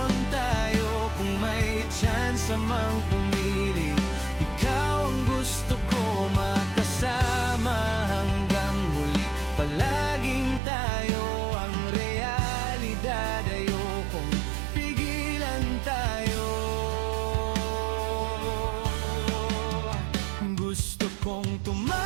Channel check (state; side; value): drops out; left; at 10.6 s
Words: tayo, kung may chance mang pumili, ikaw ang gusto ko makasama hanggang huli. Palaging tayo ang realidad, ayokong pigilan tayo. Gusto kong